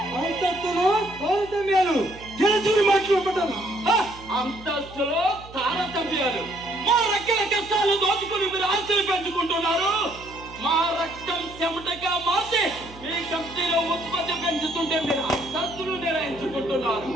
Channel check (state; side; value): noise; right; hum, 18 dB below the sound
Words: అంతస్తులో తారతమ్యాలు తెలుసుకుని మాట్లాడతాను. అంతస్తులో తారతమ్యాలు మా రెక్కల కష్టాలు దోచుకుని మీరు ఆస్తులు పెంచుకుంటున్నారు. మా రక్తం చెమటగా మార్చి మీ కంపెనీలో ఉత్పత్తి పెంచుతుంటే మీరు అంతస్తులు నిర్ణయించుకుంటున్నారు.